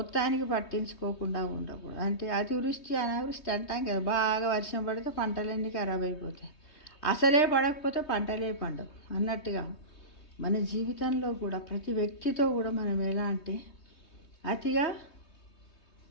పట్టించుకోకుండా ఉండకూడదు. అంటే అతివృష్టి అనావృష్టి అంటాం కదా, బాగా వర్షం పడితే పంటలన్నీ ఖరాబ్ అయిపోతాయి, అసలే పడకపోతే పంటలే పండవు అన్నట్టుగా మన జీవితంలో కూడా ప్రతి వ్యక్తితో కూడా మనం ఎలా అంటే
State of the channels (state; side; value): late; right; 3.2 ms